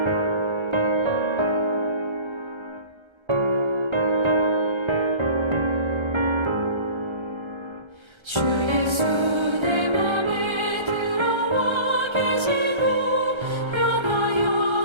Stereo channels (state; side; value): late; left; 1.3 ms